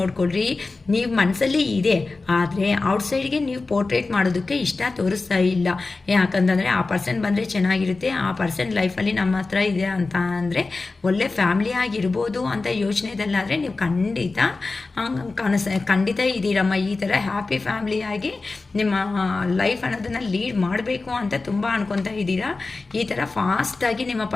ನೀವು ಮನಸ್ಸಲ್ಲಿ ಇದೆ ಆದರೆ ಔಟ್ಸೈಡ್ಗೆ ನೀವು ಪೋರ್ಟ್ರೇಟ್ ಮಾಡೋದಕ್ಕೆ ಇಷ್ಟ ತೋರಿಸ್ತಾ ಇಲ್ಲ. ಯಾಕಂತಂದರೆ ಆ ಪರ್ಸನ್ ಬಂದರೆ ಚೆನ್ನಾಗಿರುತ್ತೆ, ಆ ಪರ್ಸನ್ ಲೈಫಲ್ಲಿ ನಮ್ಮ ಹತ್ರ ಇದೆ ಅಂತ ಅಂದರೆ ಒಳ್ಳೆ ಫ್ಯಾಮಿಲಿ ಆಗಿರ್ಬೋದು ಅಂತ ಯೋಚನೆದಲ್ಲಾದರೆ ನೀವು ಖಂಡಿತ ಇದ್ದೀರಮ್ಮ. ಈ ಥರ ಹ್ಯಾಪಿ ಫ್ಯಾಮಿಲಿಯಾಗಿ ನಿಮ್ಮ ಲೈಫ್ ಅನ್ನೋದನ್ನು ಲೀಡ್ ಮಾಡಬೇಕು ಅಂತ ತುಂಬ ಅನ್ಕೊತಾ ಇದ್ದೀರಾ. ಈ ಥರ ಫಾಸ್ಟಾಗಿ ನಿಮ್ಮ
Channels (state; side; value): quieter; right; 3.7 dB